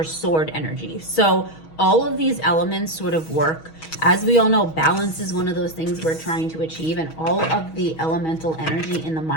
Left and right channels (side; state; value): right; late; 6.3 ms